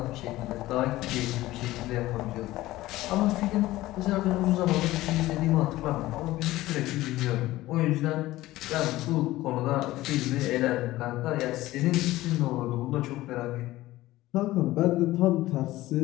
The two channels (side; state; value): right; quieter; 16.9 dB